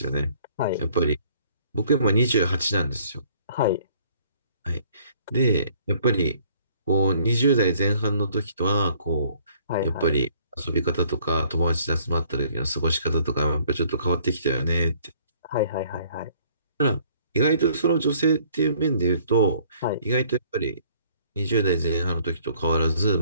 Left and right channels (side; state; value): both; inverted; correlation -0.59